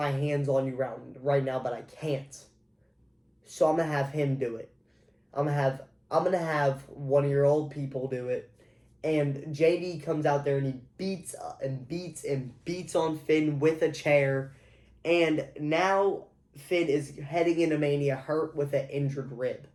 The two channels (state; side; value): identical; both; correlation 1.00